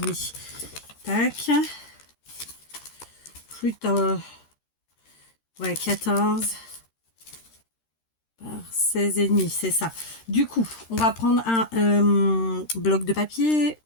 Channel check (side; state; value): right; late; 13 ms